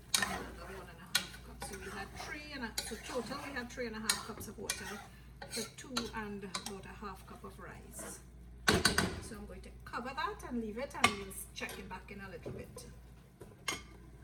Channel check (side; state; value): both; identical; correlation 1.00